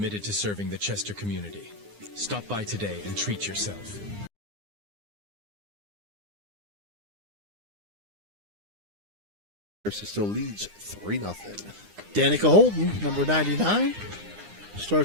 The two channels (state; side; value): late; left; 9.8 ms